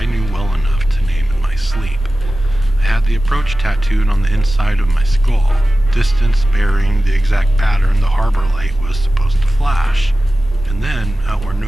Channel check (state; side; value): normal; both; correlation 0.95